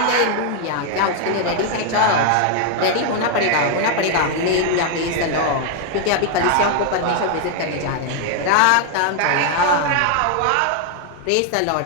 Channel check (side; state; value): both; different; correlation 0.00